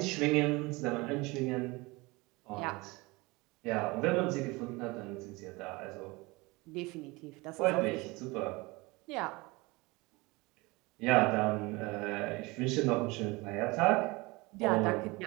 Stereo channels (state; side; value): quieter; left; 24.0 dB